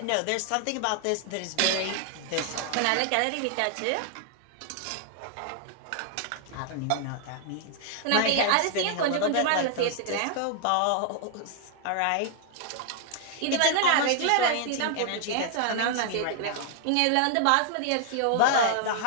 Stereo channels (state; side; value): different; both; correlation 0.00